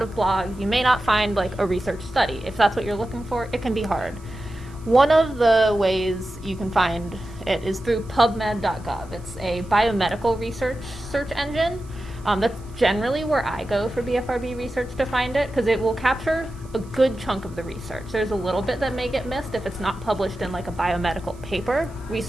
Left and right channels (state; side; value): noise; right; hiss, 27 dB below the sound